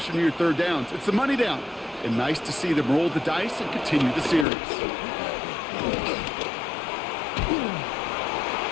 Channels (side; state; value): right; drops out; at 4.5 s